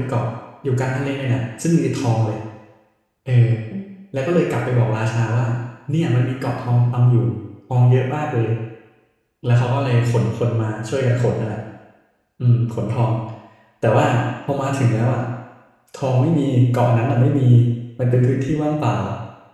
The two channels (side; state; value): both; identical; correlation 1.00